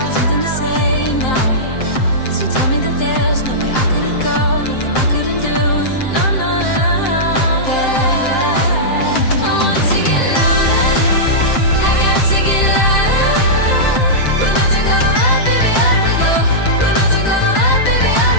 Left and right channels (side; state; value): right; late; 7.7 ms